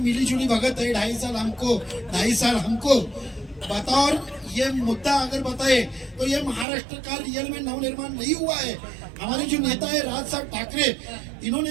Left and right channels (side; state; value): left; drops out; at 6.7 s